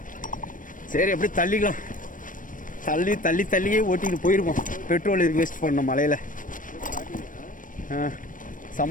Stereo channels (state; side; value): late; right; 0.38 ms